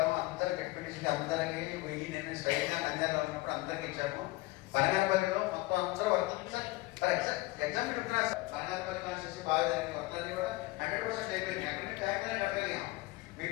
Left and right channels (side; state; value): right; quieter; 20.9 dB